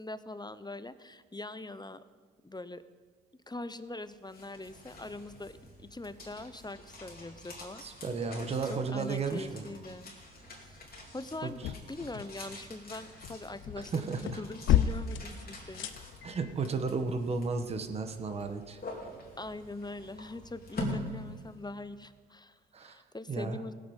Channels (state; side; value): normal; both; correlation 0.50